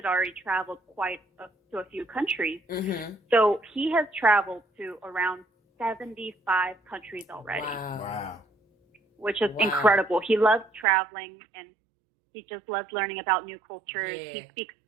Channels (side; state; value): left; drops out; at 10.9 s